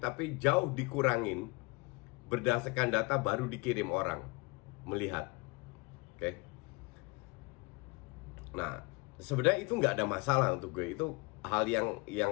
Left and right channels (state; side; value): quieter; right; 27.4 dB